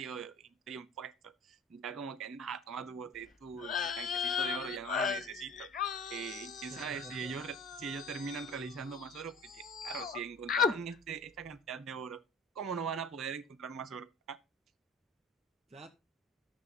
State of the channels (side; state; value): both; normal; correlation 0.42